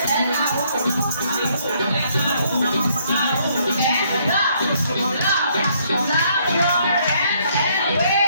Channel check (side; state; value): both; inverted; correlation -0.68